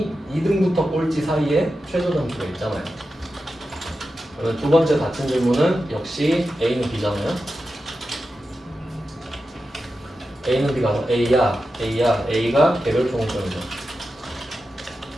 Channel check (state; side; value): normal; both; correlation 0.91